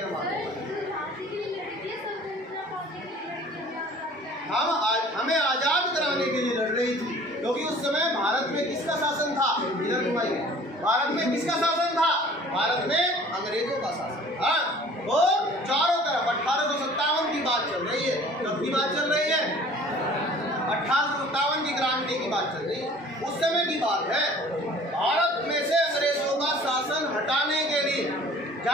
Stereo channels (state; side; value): normal; both; correlation 0.49